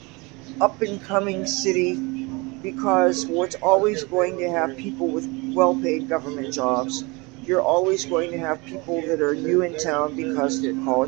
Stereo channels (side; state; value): left; quieter; 26.5 dB